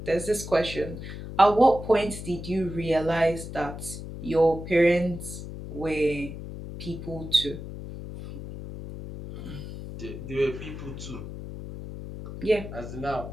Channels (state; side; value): noise; left; hum, 10 dB below the sound